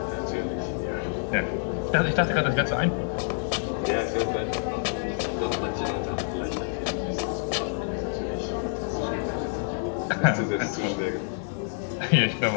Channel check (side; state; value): right; silent; digital silence